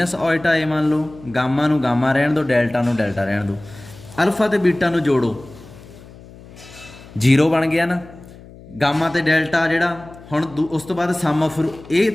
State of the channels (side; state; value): left; noise; hum, 20 dB below the sound